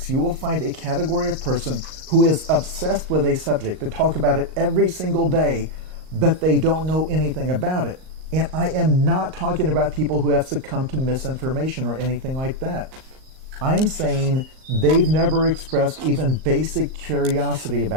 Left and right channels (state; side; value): late; left; 38 ms